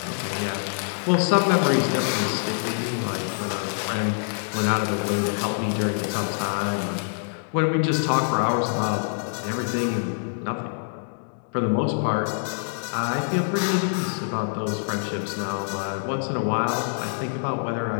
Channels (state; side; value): silent; right; digital silence